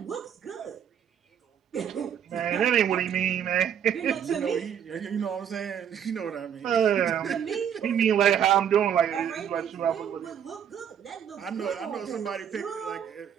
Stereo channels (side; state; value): left; quieter; 8.8 dB